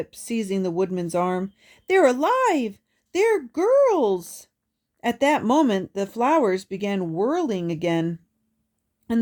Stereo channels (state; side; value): identical; both; correlation 1.00